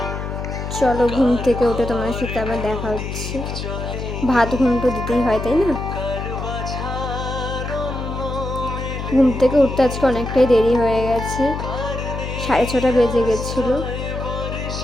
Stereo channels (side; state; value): left; noise; hum, 5 dB below the sound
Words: চলো, ঘুম থেকে উঠে তোমার সাথে আবার দেখা হচ্ছে। ভাত ঘুমটো দিতেই হয়, তাই না? ঘুম থেকে উঠতে আজকে অনেকটাই দেরি হয়ে গেছে, 6:30 বেজে গেছিলো।